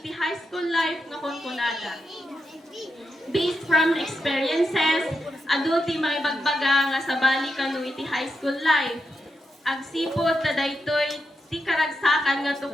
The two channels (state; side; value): normal; both; correlation 0.86